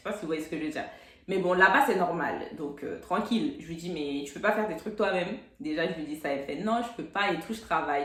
pas si vous voyez ce que je veux dire. Mais bon, là-bas, c'est normal. Donc, tranquille. Je lui dis, mais tu peux pas faire des trucs toi-même. Déjà, je lui dis ça. Elle fait, non, je peux pas et tout, je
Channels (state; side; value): identical; both; correlation 1.00